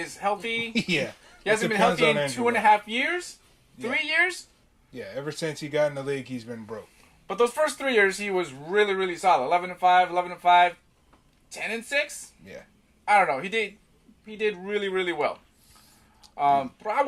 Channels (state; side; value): identical; both; correlation 1.00